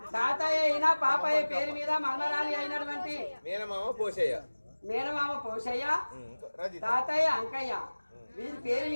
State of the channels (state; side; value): inverted; both; correlation -1.00